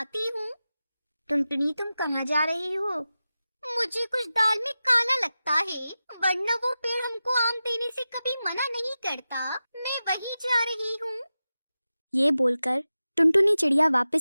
हूँ। टुनटुनी तुम कहाँ जा रही हो? मुझे कुछ दाल में काला लगता है, वरना वो पेड़ हमको आम देने से कभी मना नहीं करता। मैं वहीं जा रही हूँ। ये बोलकर टुनटुनी चिड़िया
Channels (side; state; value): both; inverted; correlation -0.93